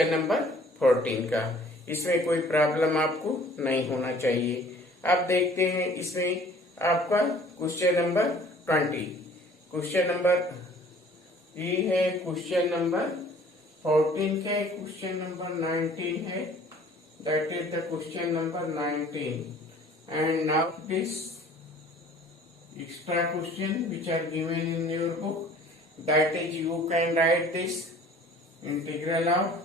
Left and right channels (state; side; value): normal; both; correlation 0.52